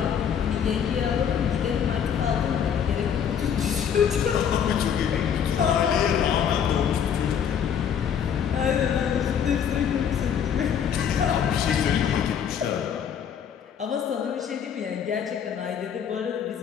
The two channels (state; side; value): quieter; right; 8.1 dB